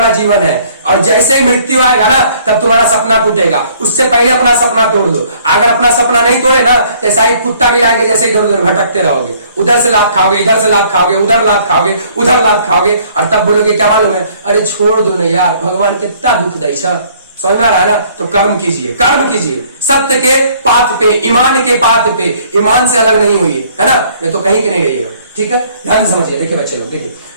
जीवन है, और जैसे ही मृत्यु आएगा ना तब तुम्हारा सपना टूटेगा। उससे पहले अपना सपना तोड़ दो। अगर अपना सपना नहीं तोड़े ना तो ऐसा ही कुत्ता भी लाएंगे जैसे इधर उधर भटकते रहोगे, उधर से लात खाओगे, इधर से लात खाओगे, उधर लात खाओगे, उधर लात खाओगे, और तब बोलोगे क्या मालूम है, अरे छोड़ दो ना यार, भगवान कितना दुख दे। समझ में आ रहा है ना। तो कर्म कीजिए, कर्म कीजिए, सत्य के पाथ पे, ईमान के पाथ पे, ईमान से अलग नहीं हुई है ना, नहीं तो कहीं के नहीं रहिएगा, ठीक है। ध्यान समझिए। देखिए बच्चे लोग, देखिए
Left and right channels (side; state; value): both; inverted; correlation -0.60